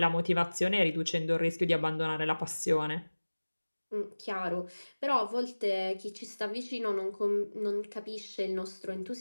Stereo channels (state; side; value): inverted; both; correlation -1.00